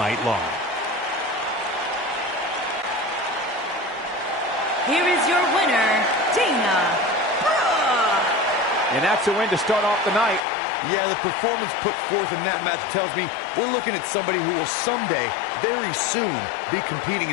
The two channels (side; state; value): right; drops out; at 10.4 s